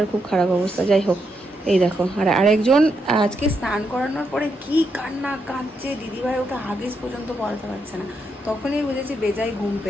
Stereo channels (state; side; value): normal; both; correlation 0.80